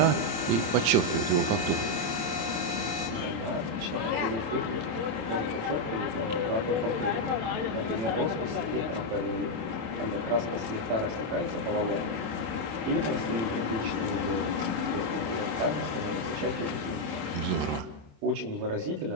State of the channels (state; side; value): late; left; 27 ms